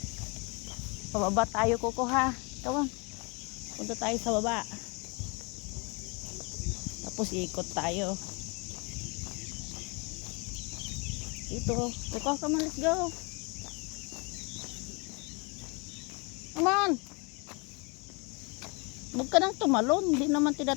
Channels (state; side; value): quieter; right; 30.7 dB